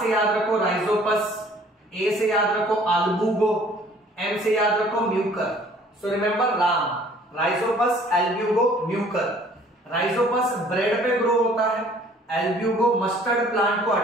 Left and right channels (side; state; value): both; normal; correlation 0.55